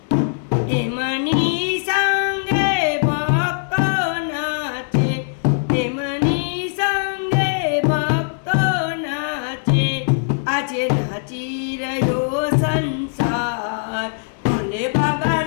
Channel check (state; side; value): silent; right; digital silence